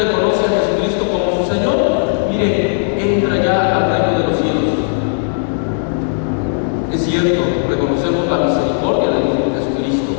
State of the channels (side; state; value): right; silent; 69 dB below the other